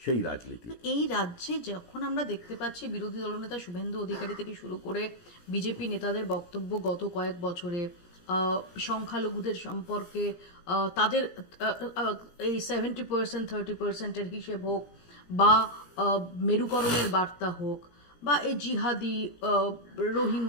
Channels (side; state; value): right; late; 17 ms